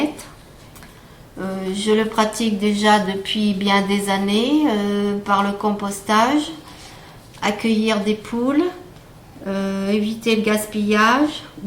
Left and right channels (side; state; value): both; identical; correlation 1.00